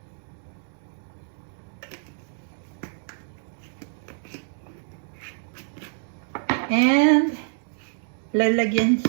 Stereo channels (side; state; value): left; silent; digital silence